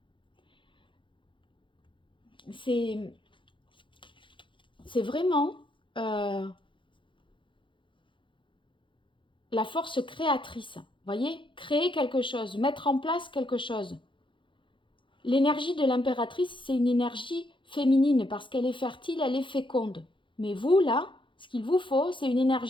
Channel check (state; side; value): late; right; 0.24 ms